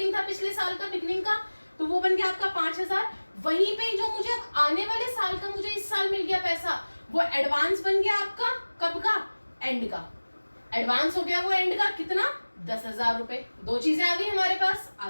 था पिछले साल का बिगनिंग का, तो वो बन गया आपका 5,000। वहीं पे जो मुझे आने वाले साल का मुझे इस साल मिल गया पैसा, वो एडवांस बन गया आपका कब का? एंड का। एडवांस हो गया वो एंड का, कितना? 10,000 रुपए। दो चीजें आ गई हमारे पास।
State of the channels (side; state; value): both; inverted; correlation -1.00